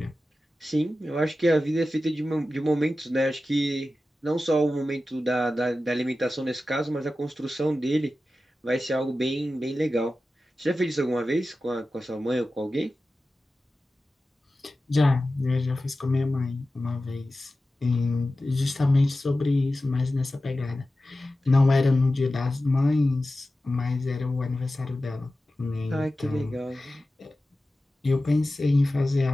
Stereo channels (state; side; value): normal; both; correlation 0.94